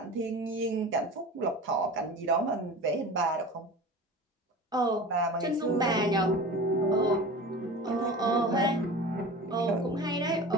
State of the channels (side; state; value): both; normal; correlation 0.35